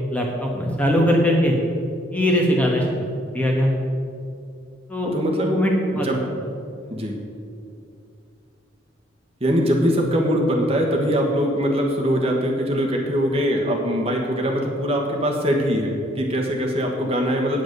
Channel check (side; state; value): both; normal; correlation 0.66